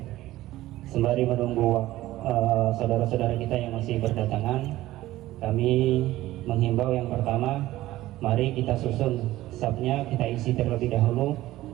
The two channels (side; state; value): left; quieter; 16.0 dB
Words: Sembari menunggu saudara-saudara kita yang masih berdatangan, kami menghimbau yang pertama, mari kita susun safnya, kita isi terlebih dahulu